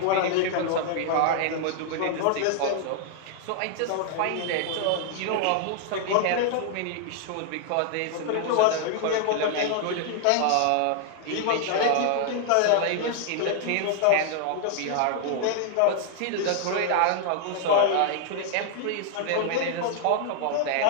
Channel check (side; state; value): both; different; correlation 0.00